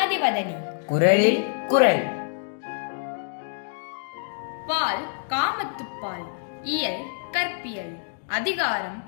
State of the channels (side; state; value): right; silent; digital silence